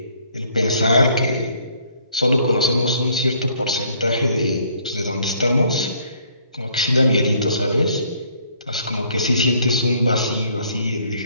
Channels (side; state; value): both; inverted; correlation -0.62